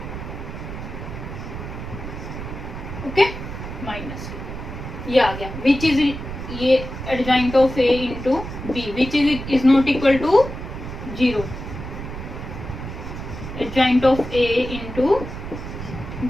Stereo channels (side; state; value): right; noise; rumble, 8 dB below the sound